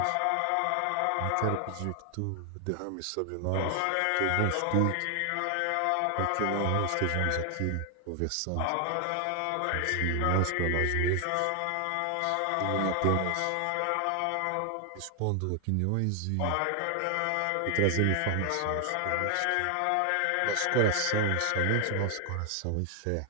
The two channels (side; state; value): both; different; correlation 0.00